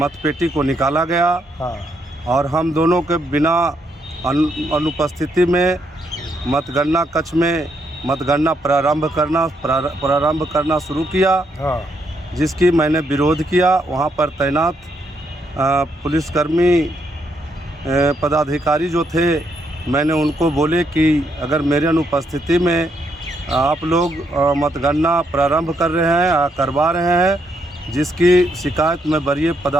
को निकाला गया और हम दोनों के बिना अनुपस्थिति में मतगणना कक्ष में मतगणना प्रारंभ करना शुरू किया, जिसकी मैंने विरोध किया। वहाँ पर तैनात पुलिसकर्मी पदाधिकारी जो थे, मैंने उनको बोले कि अगर मेरे अनुपस्थिति में आप लोग मतगणना प्रारंभ कर रहे हैं, करवा रहे हैं, जिसकी शिकायत मैं वरीय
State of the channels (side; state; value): both; normal; correlation 0.76